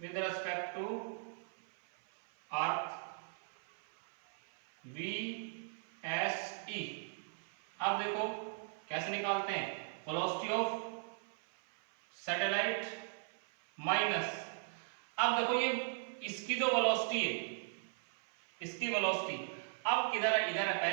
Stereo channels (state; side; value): silent; left; 52 dB below the other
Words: respect to earth VSE। अब देखो कैसे निकालते हैं, वेलोसिटी ऑफ सैटेलाइट माइनस, अब देखो ये इसकी जो वेलोसिटी है, इसकी वेलोसिटी अब किधर है, इधर है,